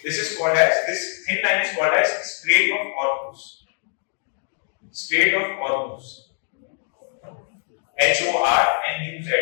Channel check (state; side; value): silent; right; digital silence